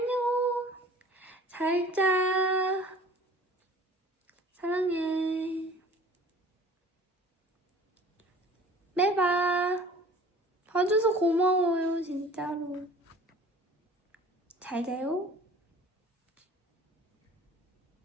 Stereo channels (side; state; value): both; normal; correlation 0.47